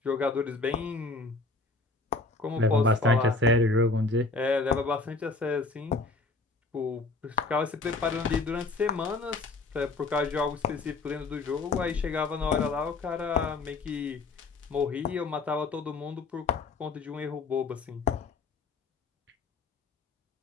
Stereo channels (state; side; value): quieter; right; 3.5 dB